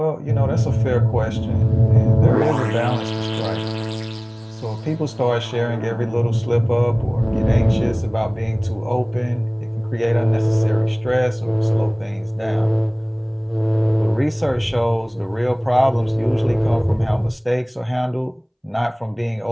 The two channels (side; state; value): both; identical; correlation 1.00